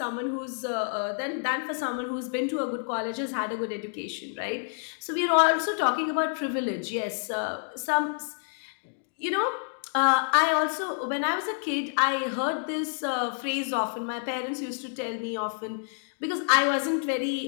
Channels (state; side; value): silent; right; digital silence